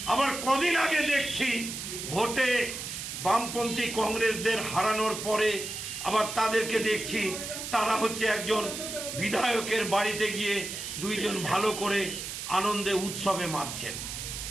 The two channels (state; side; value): noise; right; hiss, 7 dB below the sound